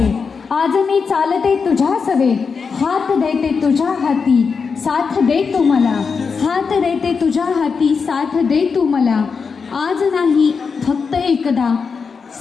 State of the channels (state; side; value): quieter; right; 5.4 dB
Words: आज मी चालते तुझ्या सवे, हात देते तुझ्या हाती साथ दे तू मला, हात देते तुझ्या हाती साथ दे तू मला। आज नाही फक्त एकदा